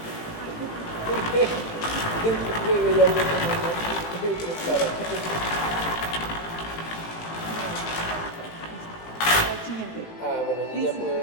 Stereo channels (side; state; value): right; late; 18 ms